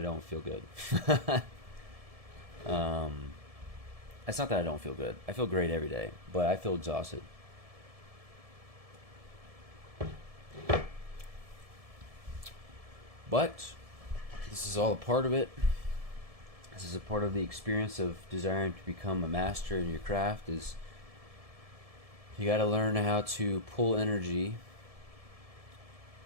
feel good. It's not that I don't feel good. I feel great every day, but I feel exhausted. But this is all a part of it. This is a part of the experience of desiring to become a master in your craft. Is you got to learn how to pull energy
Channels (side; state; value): left; late; 1.7 ms